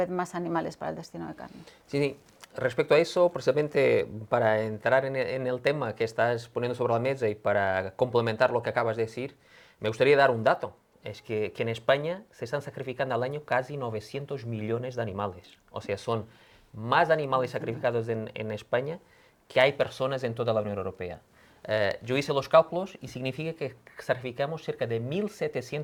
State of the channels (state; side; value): identical; both; correlation 1.00